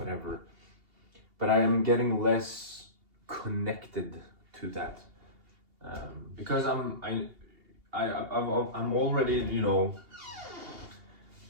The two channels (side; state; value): left; late; 2.8 ms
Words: But I am getting less connected to that, because I'm already,